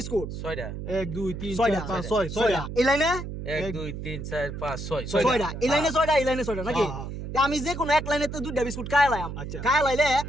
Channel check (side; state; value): right; noise; hum, 7 dB below the sound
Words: 6টা 1 2 3 ছয়টা 4 5 6 ছয়টা এই লাইনে 1 2 3 4 5 6 ছয়টা এই লাইনে ছয়টা এই লাইনে ছয়টা নাকি তা আমি যে কোনো এক লাইনে তো দুইটা বিস্কুট খাই লাইম আচ্ছা। খাই লাইলে